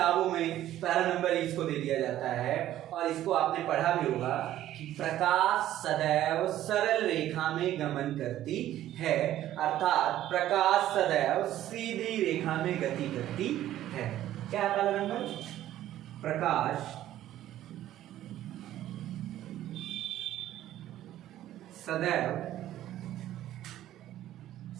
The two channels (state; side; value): quieter; left; 13.1 dB